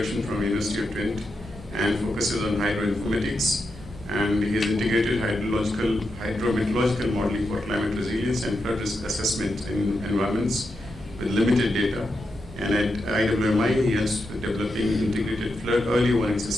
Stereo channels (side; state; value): both; normal; correlation 0.86